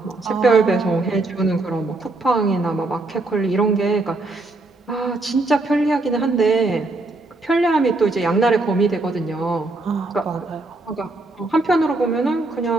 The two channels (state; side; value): quieter; left; 3.1 dB